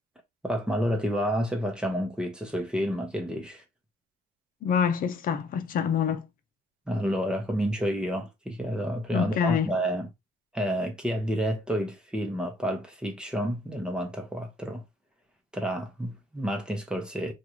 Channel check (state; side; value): normal; both; correlation 0.66